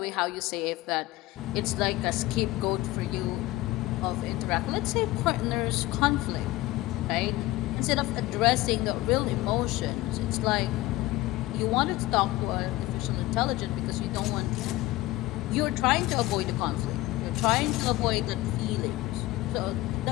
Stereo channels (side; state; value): right; quieter; 17.9 dB